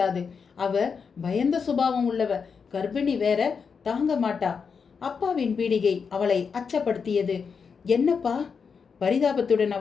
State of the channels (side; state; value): right; quieter; 5.9 dB